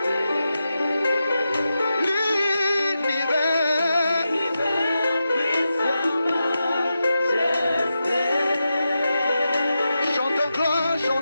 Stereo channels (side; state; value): both; inverted; correlation -0.89